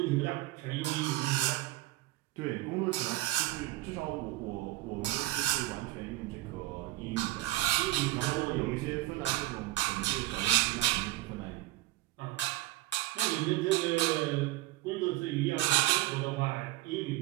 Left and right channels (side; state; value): left; quieter; 18.0 dB